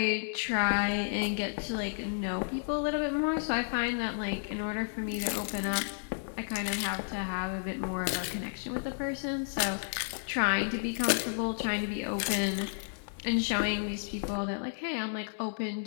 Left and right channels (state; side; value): silent; right; 56 dB below the other